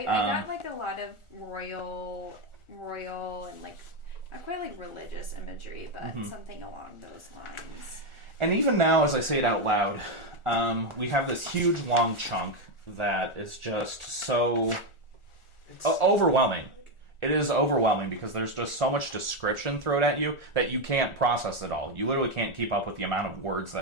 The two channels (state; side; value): late; right; 1.4 ms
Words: got like a lot of royal and like not quite like religious imagery, but something along those lines. And even now, as I say it out loud, we have this huge long chunk that is just so overwhelming. It is overwhelming because there's just so much description thrown at you that you can't process it all. You literally can't keep up with the amount of words